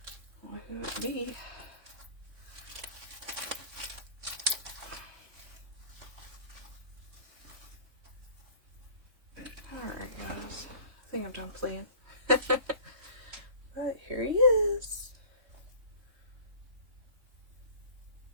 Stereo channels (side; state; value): left; late; 3.6 ms